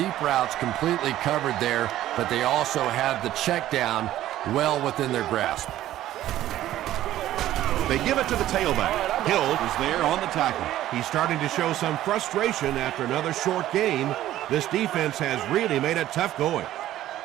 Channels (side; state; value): left; quieter; 13.6 dB